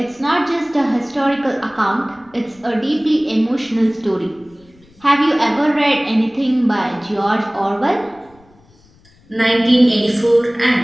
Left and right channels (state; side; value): noise; left; rumble, 30 dB below the sound